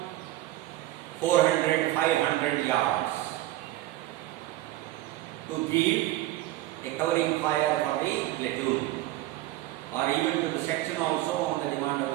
400, 500 covering fire for the platoon, or even to the section also on the demand of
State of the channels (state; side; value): quieter; left; 15.8 dB